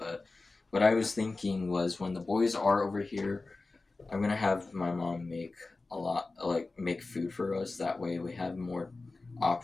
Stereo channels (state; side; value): quieter; right; 3.5 dB